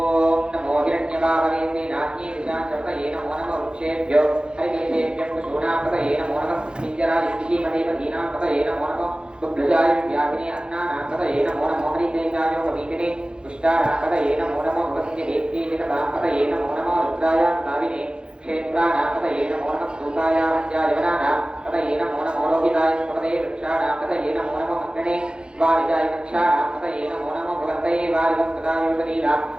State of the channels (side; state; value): left; late; 0.050 ms